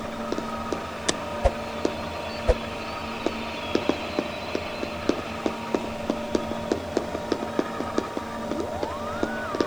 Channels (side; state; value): right; noise; hiss, 25 dB below the sound